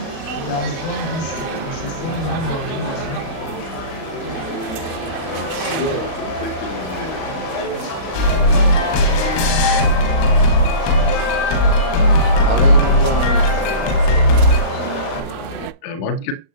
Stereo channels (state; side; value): late; right; 37 ms